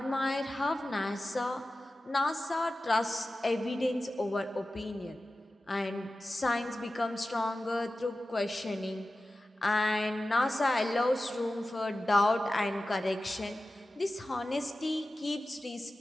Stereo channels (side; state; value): both; normal; correlation 0.94